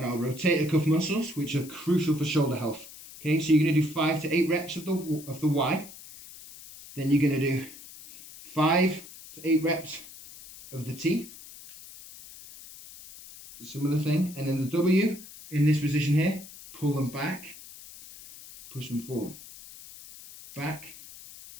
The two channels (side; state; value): left; noise; hiss, 17 dB below the sound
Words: our rotator cuff muscles, which are crucial for shoulder health. Okay, so you're going to do 5 to 8 reps of the Y. Then you're going to do 5 to 8 reps of the T. Similar thing. And then the W, in this position here, pull them back, push them forward. Back,